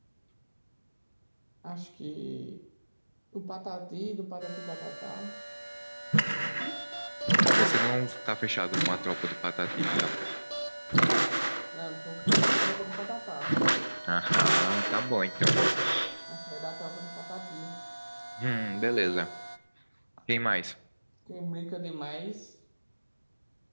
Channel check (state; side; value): inverted; both; correlation -1.00